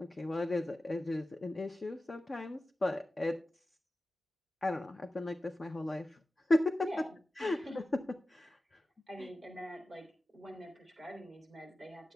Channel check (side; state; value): both; normal; correlation 0.94